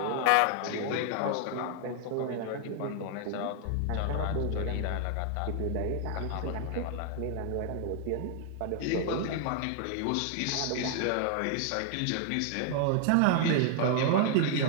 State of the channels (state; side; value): different; both; correlation 0.00